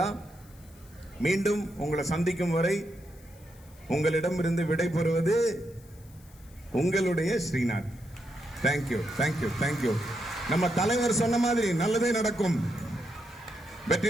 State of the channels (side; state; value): left; noise; hiss, 26 dB below the sound